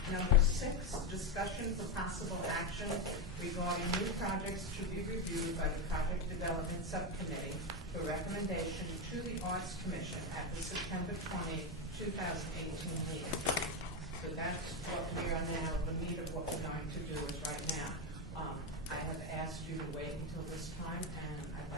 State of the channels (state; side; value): normal; both; correlation 0.09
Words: number 6, discussion for possible action regarding new projects to be reviewed by the Project Development Subcommittee for recommendation to the Arts Commission at the September 20, 2018 meeting. So that's what we are now, the meat of what we're going to do is right now. I have asked you to wait until this time, and I'd